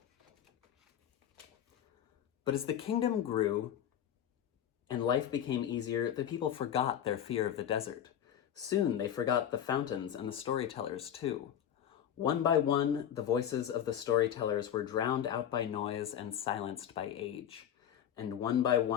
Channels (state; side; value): quieter; right; 9.8 dB